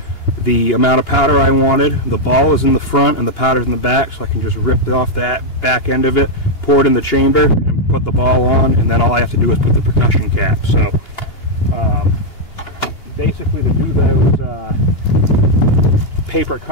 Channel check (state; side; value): late; right; 2.8 ms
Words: the amount of powder I wanted. The ball is in the front and the powder's in the back, so I can just rip off that back end of it, pour it in the chamber, and put the ball on, and then all I have to do is put the percussion cap. So basically to do those paper